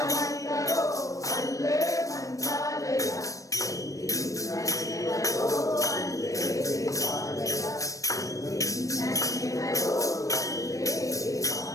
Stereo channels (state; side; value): late; right; 0.16 ms